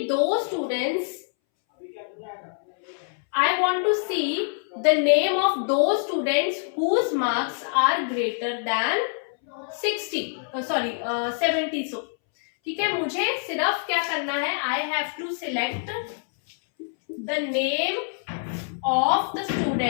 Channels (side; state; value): right; silent; 61 dB below the other